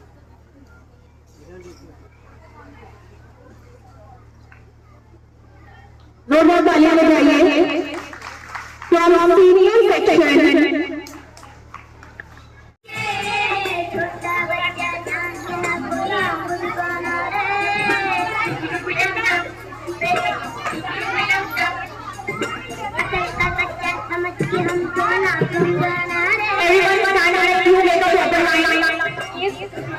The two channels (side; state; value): both; identical; correlation 1.00